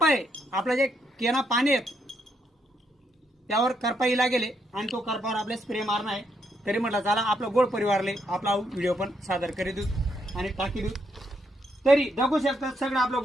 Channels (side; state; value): both; normal; correlation 0.77